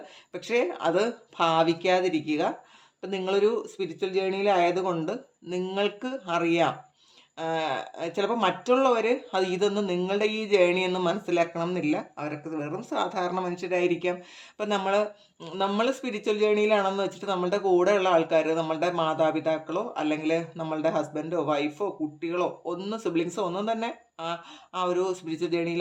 പക്ഷേ അത് ഭാവിക്കാതിരിക്കുക. ഇപ്പം നിങ്ങളൊരു സ്പിരിച്വൽ ജേണിയിലായതുകൊണ്ട് നിങ്ങൾക്ക് അറിയാം, ചിലപ്പോൾ മറ്റുള്ളവർ ഇതൊന്നും നിങ്ങളുടെ ഈ ജേണിയൊന്നും മനസ്സിലാക്കണം എന്നില്ല. അവരൊക്കെ വെറും സാധാരണ മനുഷ്യരായിരിക്കാം. അപ്പം നമ്മൾ സ്പിരിച്വൽ ജേണിയിലാണെന്ന് വെച്ചിട്ട് നമ്മളുടെ കൂടെയുള്ള ആൾക്കാർ, നമ്മളുടെ മാതാപിതാക്കളോ അല്ലെങ്കിൽ നമ്മളുടെ ഹസ്ബൻഡോ വൈഫോ കുട്ടികളോ സിബ്ലിങ്സോ ഒന്നും തന്നെ ആ ഒരു സ്പിരിച്വൽ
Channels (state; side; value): identical; both; correlation 1.00